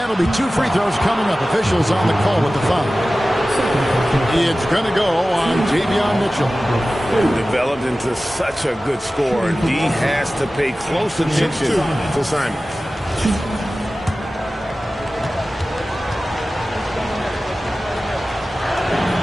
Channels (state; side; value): normal; both; correlation 0.96